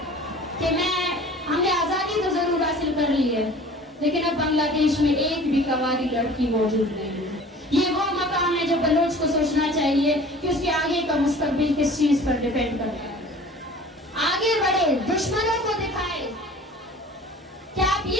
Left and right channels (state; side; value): normal; both; correlation 0.45